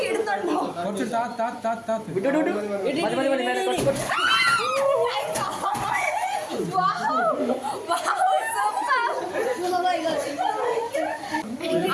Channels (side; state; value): both; identical; correlation 1.00